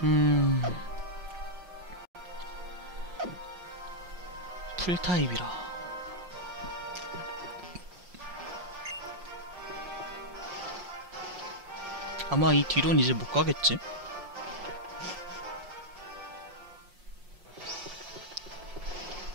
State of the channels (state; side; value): late; left; 5.6 ms